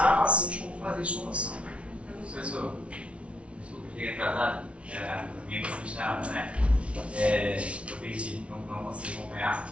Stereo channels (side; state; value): left; late; 0.061 ms